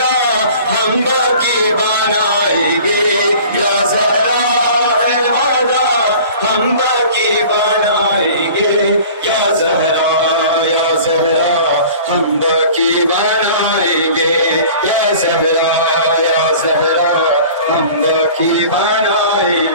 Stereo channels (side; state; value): both; inverted; correlation -0.44